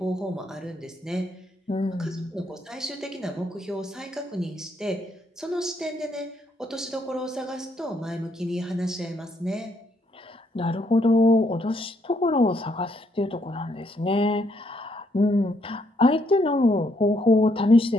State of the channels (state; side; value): normal; both; correlation 0.73